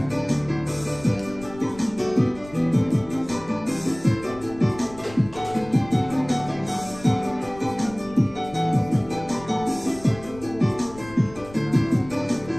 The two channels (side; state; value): left; noise; rumble, 18 dB below the sound